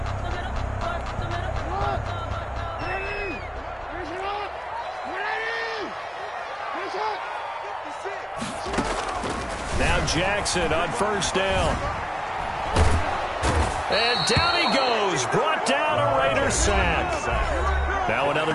Now Jackson on first down. And down he goes. Brought down a Raider sack. Now another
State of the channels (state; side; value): identical; both; correlation 1.00